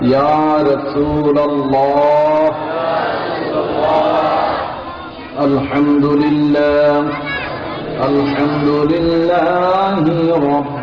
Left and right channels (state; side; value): identical; both; correlation 1.00